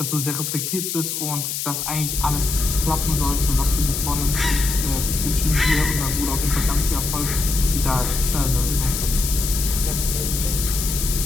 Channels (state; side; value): noise; left; hiss, 3 dB below the sound